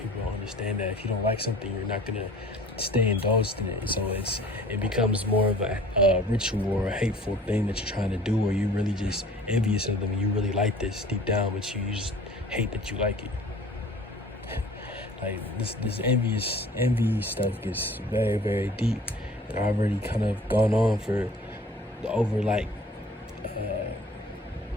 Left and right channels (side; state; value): both; normal; correlation 0.48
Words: don't understand that if you don't like something, you're not going to stay indulged in it. So it becomes more of a ritual or a hateful thing that you're trying to do, or you're really just envious of them and you really like this deep down, but you just hate that you like it. Like this envy stuff gets very, very deep, and I've already kind of gone on for over